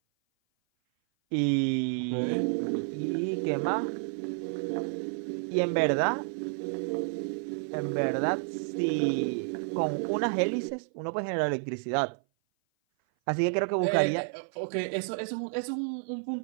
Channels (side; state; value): left; silent; 56 dB below the other